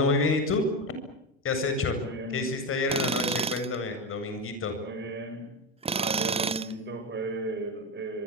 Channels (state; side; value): normal; both; correlation 0.16